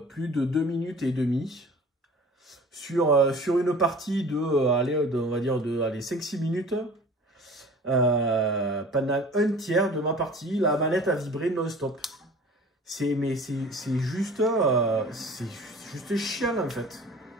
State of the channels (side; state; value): both; normal; correlation 0.44